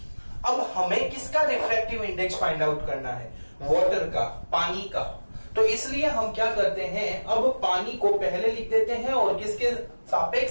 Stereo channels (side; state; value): both; inverted; correlation -1.00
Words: अब हमें किसका रिफ्रैक्टिव इंडेक्स फाइंड आउट करना है? वाटर का, पानी का। तो इसलिए हम क्या करते हैं, अब पानी को पहले लिख देते हैं और किसके